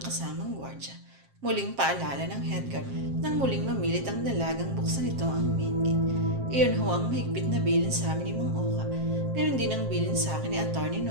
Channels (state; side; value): late; left; 7.5 ms